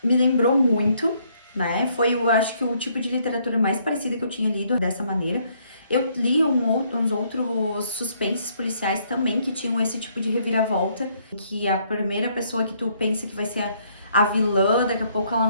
me lembrou muito, né? Foi, eu acho que o tipo de literatura mais parecida que eu tinha lido dessa maneira. Eu li uns outros suspenses policiais também que tinham esse tipo de reviravolta, que a primeira pessoa que tu pensa que vai ser a vilã, daqui a pouco ela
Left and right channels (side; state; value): both; inverted; correlation -0.68